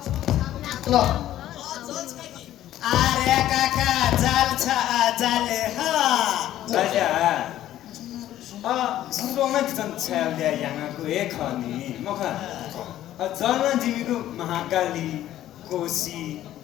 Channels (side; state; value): right; quieter; 12.9 dB